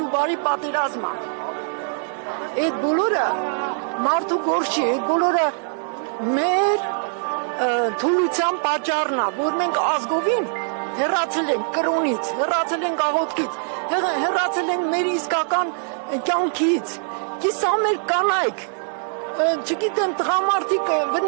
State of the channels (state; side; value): silent; left; digital silence